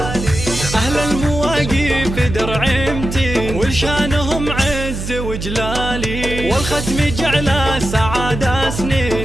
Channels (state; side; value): noise; right; hum, 6 dB below the sound